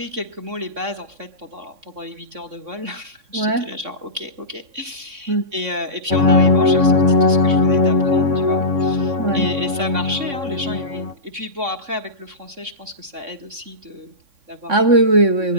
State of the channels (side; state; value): left; late; 3.6 ms